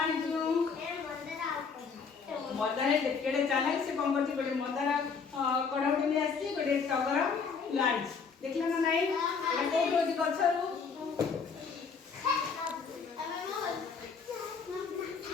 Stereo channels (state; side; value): quieter; right; 5.5 dB